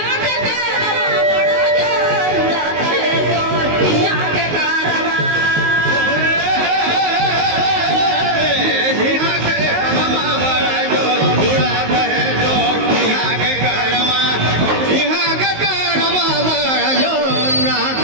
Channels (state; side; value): late; left; 19 ms